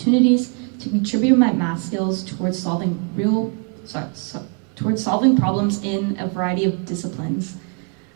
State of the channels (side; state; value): left; quieter; 37.5 dB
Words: to contribute my math skills towards solving problems in a variety of disciplines.